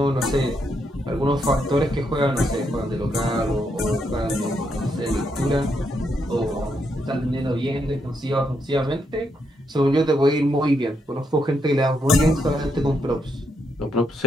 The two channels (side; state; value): both; normal; correlation 0.79